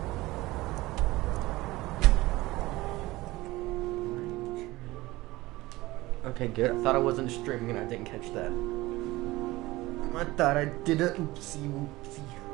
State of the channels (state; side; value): quieter; left; 19.3 dB